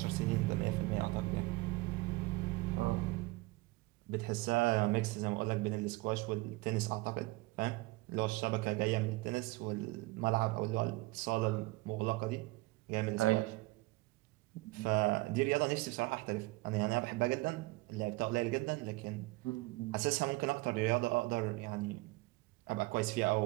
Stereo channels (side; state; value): left; quieter; 22.1 dB